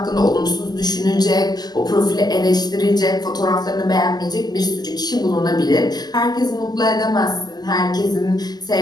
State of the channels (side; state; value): right; late; 0.20 ms